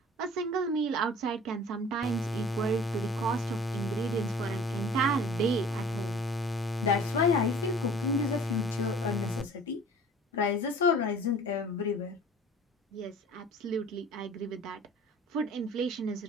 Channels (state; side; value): normal; both; correlation 0.47